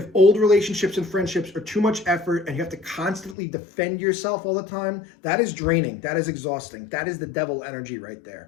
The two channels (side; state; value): right; drops out; at 3.4 s